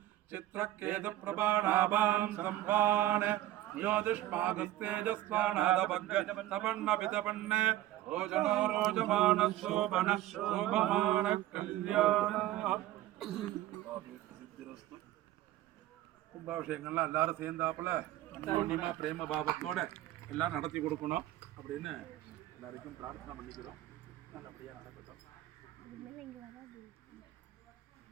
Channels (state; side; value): quieter; left; 14.6 dB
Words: चित्रकेतुप्रभाणाभां सम्भान् യോതിഷ്മാകസ്തേജസ്വാണാദപന്ന ഓജനോ രോജമാന ശോഭന ശോഭമാന കല്യാണ. கும்பாபிஷேகங்கள்லாம் எல்லாரும் சேர்ந்தாப்புல அன்யோன்யமா பிரேம பாவத்தோட எல்லாம் நடத்தி கொடுக்கணும் அப்படின்னு எல்லாருக்கும் பிரார்த்தனை பண்ணிக்கிறோம். நல்லபடியா நடக்கட்டும்.